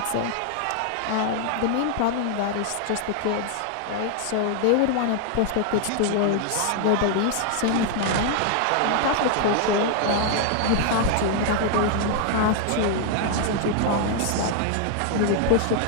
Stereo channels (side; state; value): both; different; correlation 0.00